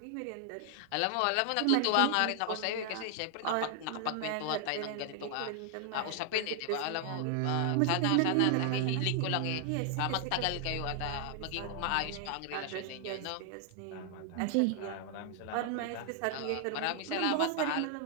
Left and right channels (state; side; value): different; both; correlation 0.00